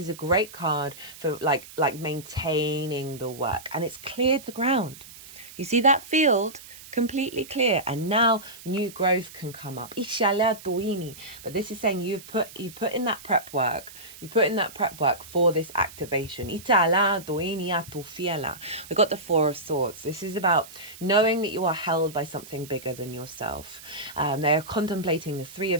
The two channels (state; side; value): noise; right; hiss, 17 dB below the sound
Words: a great card for like maintaining the work, and it's cleared the ground. You see that field? Completely clear, and now new growth can come up. But this is saying you've put in that prep work. You put in that prep work for this activation. We got the Four of Swords. This is about knowing that you are held by something bigger than yourself. They are contemplating the Three